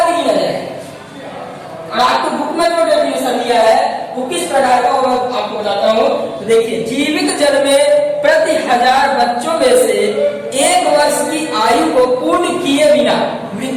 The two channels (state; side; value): identical; both; correlation 1.00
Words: ही गिना जाएगा। और आपको बुक में जो डेफिनेशन दिया है वो किस प्रकार का मैं आपको बताता हूँ। तो देखिए, जीवित जन्मे प्रति 1000 बच्चों में से 1 वर्ष की आयु को पूर्ण किए बिना